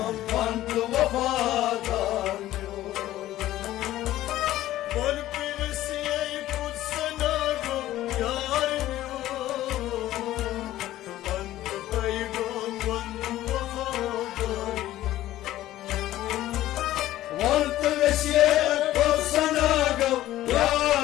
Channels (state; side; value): quieter; right; 14.5 dB